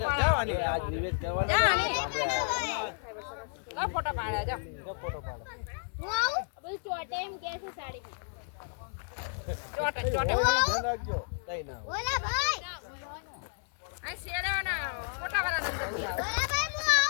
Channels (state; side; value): silent; right; 57 dB below the other